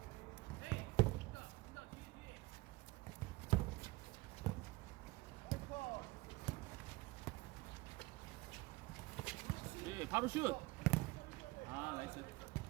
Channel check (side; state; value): left; quieter; 21.5 dB